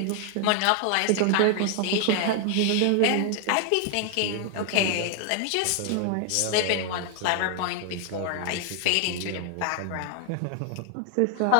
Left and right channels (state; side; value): different; both; correlation 0.00